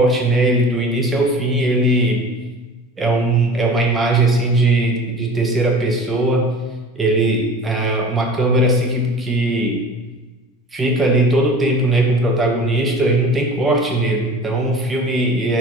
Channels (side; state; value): both; normal; correlation 0.41